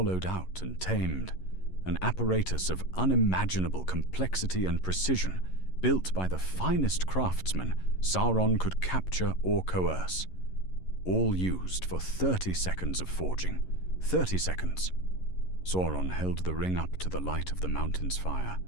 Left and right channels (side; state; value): right; late; 11 ms